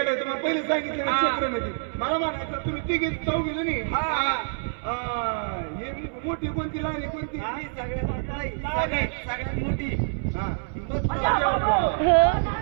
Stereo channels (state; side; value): silent; left; 61 dB below the other